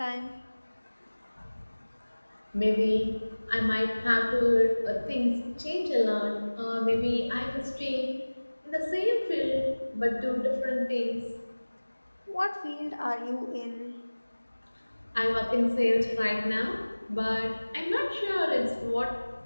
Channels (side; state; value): both; inverted; correlation -1.00